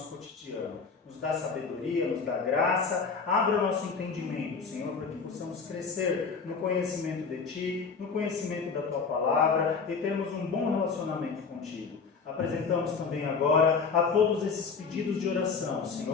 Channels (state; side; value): quieter; right; 5.2 dB